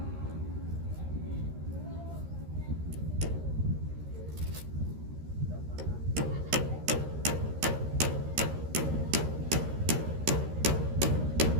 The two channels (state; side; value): late; left; 13 ms